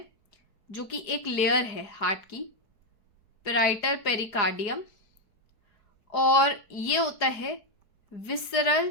जो कि एक लेयर है हार्ट की, पेराइटल पेरिकार्डियम। और ये होता है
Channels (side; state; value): right; late; 4.7 ms